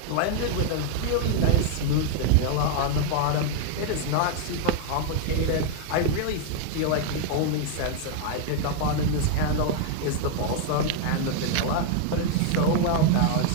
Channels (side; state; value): both; different; correlation 0.00